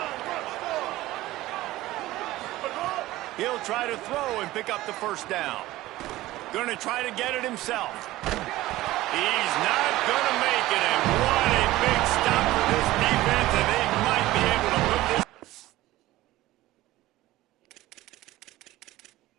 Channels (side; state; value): left; quieter; 16.9 dB